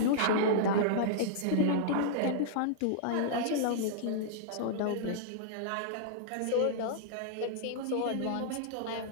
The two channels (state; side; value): different; both; correlation -0.02